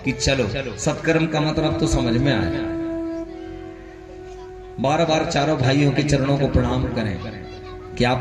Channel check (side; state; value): both; identical; correlation 1.00